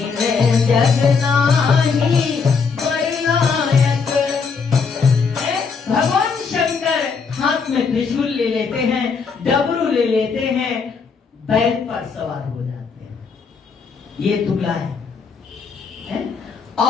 जगनाही। बरलायक भगवान शंकर हाथ में त्रिशूल ले लेते हैं, डमरू ले लेते हैं, बैल पर सवार हो जाते हैं। ये दूल्हा है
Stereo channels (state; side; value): quieter; right; 5.4 dB